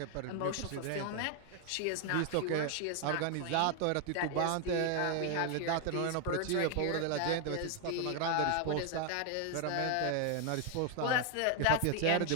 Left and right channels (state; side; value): different; both; correlation 0.00